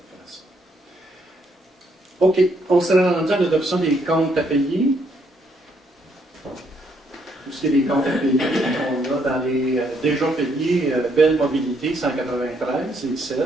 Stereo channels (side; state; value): both; normal; correlation 0.72